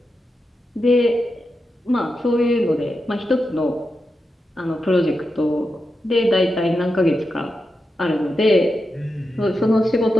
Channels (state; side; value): normal; both; correlation 0.88